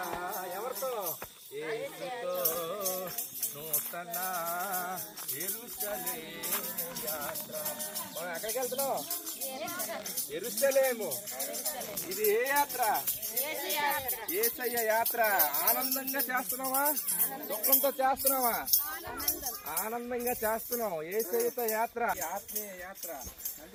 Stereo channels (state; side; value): identical; both; correlation 1.00